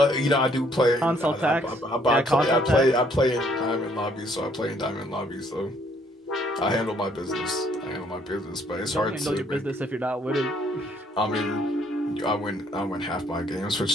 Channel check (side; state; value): both; normal; correlation 0.65